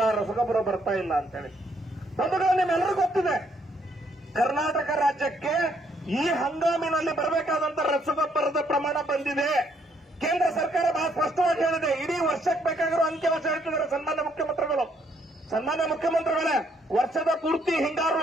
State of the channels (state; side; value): normal; both; correlation 0.70